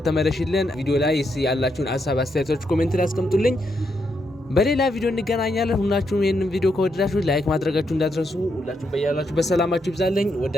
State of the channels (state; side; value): normal; both; correlation 0.80